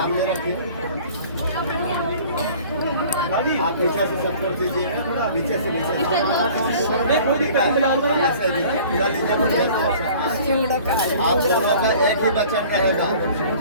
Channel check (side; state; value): both; inverted; correlation -0.48